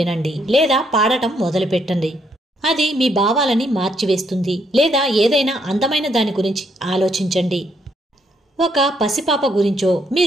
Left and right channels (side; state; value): both; normal; correlation 0.73